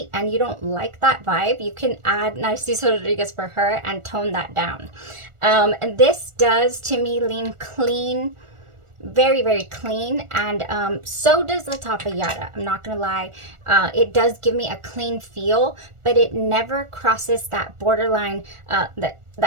and you don't like that vibe, you can add Narciso Rodriguez For Her and tone that down. And this does, to me, lean clean, very, very clean. And so does LATTAFA YARA. I'm not gonna lie. It does give me a clean feel, but it never crosses that borderline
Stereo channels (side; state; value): left; late; 1.4 ms